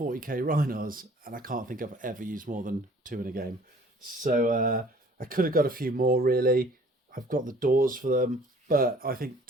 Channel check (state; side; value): normal; both; correlation 0.53